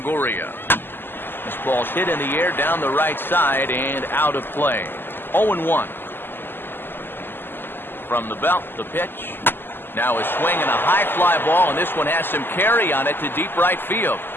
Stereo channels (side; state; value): right; late; 0.097 ms